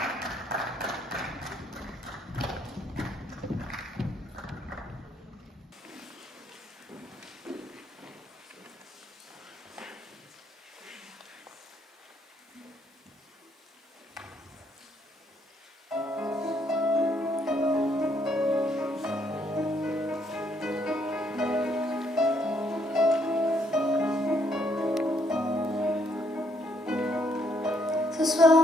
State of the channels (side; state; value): both; normal; correlation 0.71